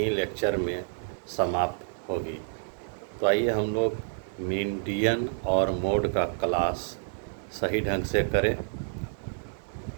लेक्चर में समाप्त होगी। तो आइए हम लोग मीडियन और मोड का क्लास सही ढंग से करें।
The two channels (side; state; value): left; silent; digital silence